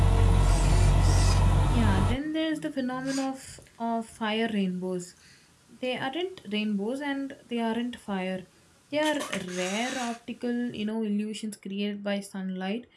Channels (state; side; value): identical; both; correlation 1.00